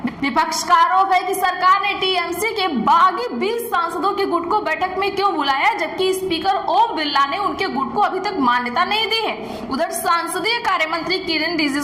विपक्ष का आरोप है कि सरकार ने टीएमसी के बागी 20 सांसदों के गुट को बैठक में क्यों बुलाया, जबकि स्पीकर ओम बिरला ने उनके गुट को अभी तक मान्यता नहीं दी है। उधर संसदीय कार्य मंत्री किरेन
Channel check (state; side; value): identical; both; correlation 1.00